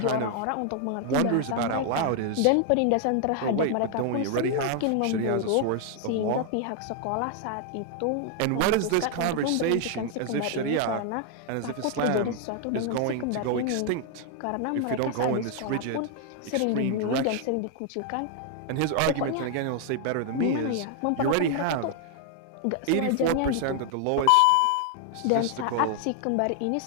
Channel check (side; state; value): both; different; correlation 0.00